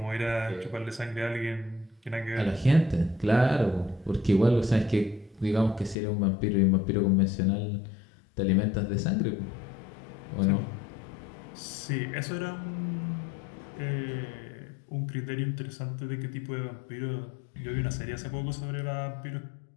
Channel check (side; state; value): right; drops out; at 6.0 s